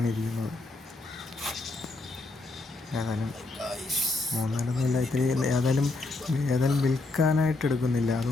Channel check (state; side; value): quieter; right; 3.2 dB